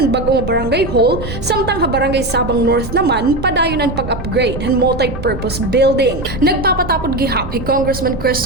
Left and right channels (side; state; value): right; noise; rumble, 9 dB below the sound